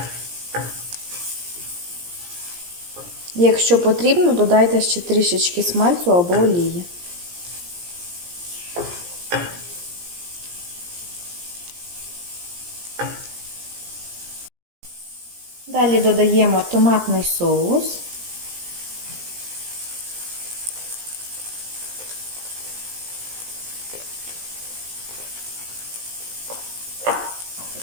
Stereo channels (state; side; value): late; left; 17 ms